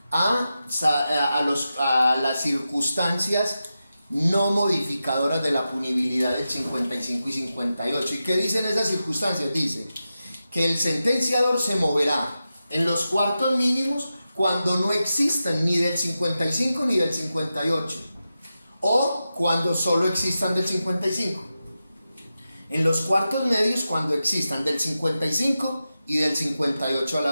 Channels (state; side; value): inverted; both; correlation -0.91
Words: a las circunstancias no modificadoras de la punibilidad del 55 y 58. ¿Y qué dicen esas circunstancias? Dice que el sentenciador se moverá en los cuartos mínimos cuando no existan ni del 55 ni del 58, o cuando solo existan del 55. En los cuartos medios cuando existan del 55 y del 58 a la